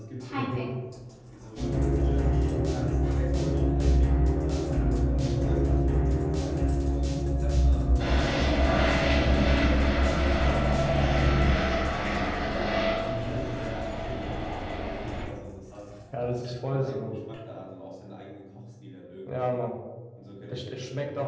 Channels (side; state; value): both; identical; correlation 1.00